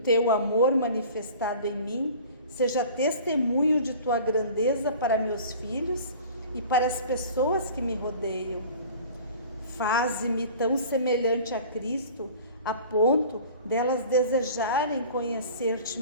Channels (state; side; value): inverted; both; correlation -0.43